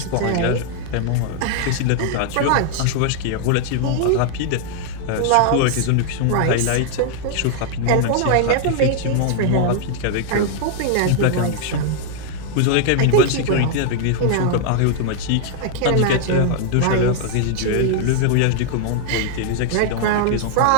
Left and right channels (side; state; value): both; different; correlation 0.00